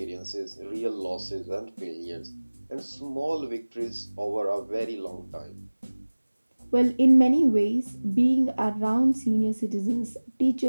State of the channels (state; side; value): inverted; both; correlation -1.00